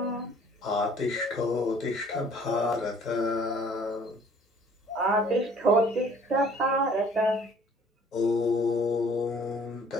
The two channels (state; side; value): normal; both; correlation 0.55